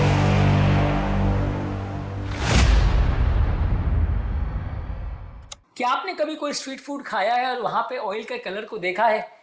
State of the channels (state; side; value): identical; both; correlation 1.00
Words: क्या आपने कभी कोई स्ट्रीट फूड खाया है और वहां पे ऑयल के कलर को देखा है?